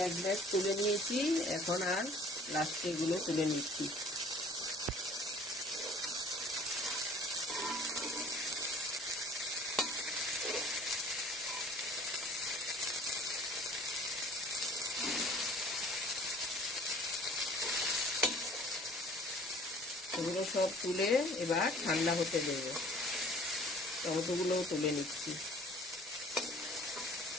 এক ব্যাগ তুলে নিয়েছি, এখন আর লাস্টে এগুলো তুলে নিচ্ছি। এগুলো সব তুলে এবার ঠান্ডা হতে দেব। টমেটোগুলোও তুলে নিচ্ছি।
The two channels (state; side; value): normal; both; correlation 0.51